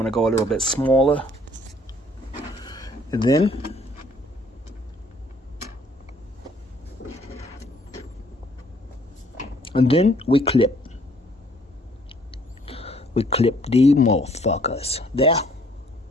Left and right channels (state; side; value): normal; both; correlation 0.61